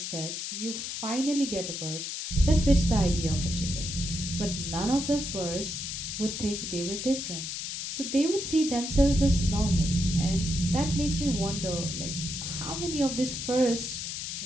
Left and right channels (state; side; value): noise; left; hiss, 5 dB below the sound